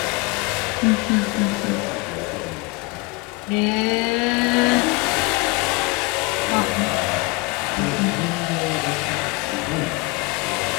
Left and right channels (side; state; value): right; quieter; 25.9 dB